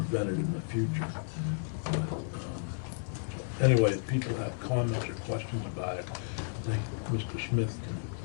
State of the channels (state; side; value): silent; right; digital silence